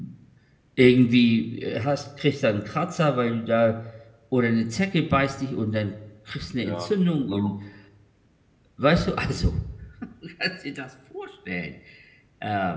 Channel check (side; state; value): both; identical; correlation 1.00